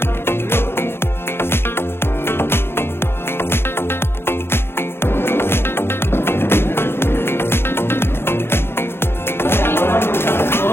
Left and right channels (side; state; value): right; late; 0.11 ms